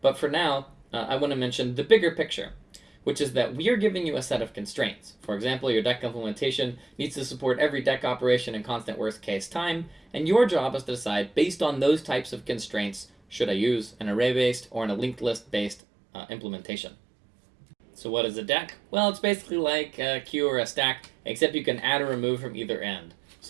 for now, I want to mention the bigger picture, which is that we are giving you a set of constraints. For example, your Deque implementation needs to support every Deque operation in constant worst case time, and your job is to decide, based on those types of constraints, should I use an array-based or a linked list-based implementation. So what is a Deque? Well, it's basically like a queue or a stack, except you can add or remove from either end.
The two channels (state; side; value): drops out; left; at 15.8 s